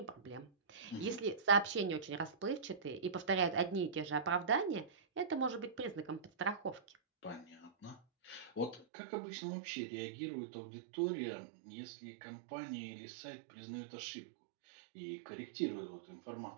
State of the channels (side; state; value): left; drops out; at 8.8 s